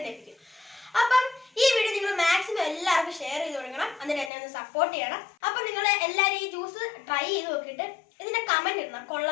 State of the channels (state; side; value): drops out; right; at 4.3 s